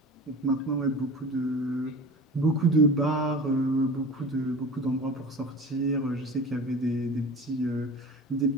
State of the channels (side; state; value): both; normal; correlation 0.36